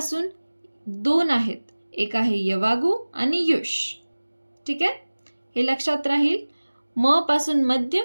2 आहेत, एक आहे यवागू आणि युष. ठीक आहे, हे लक्षात राहील. म पासून मध्य,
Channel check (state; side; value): inverted; both; correlation -1.00